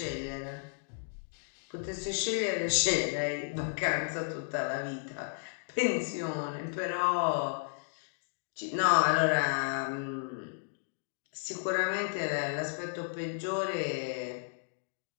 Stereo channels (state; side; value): silent; right; digital silence